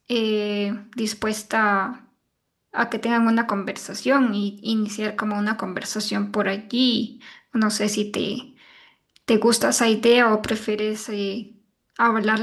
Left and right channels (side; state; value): both; identical; correlation 1.00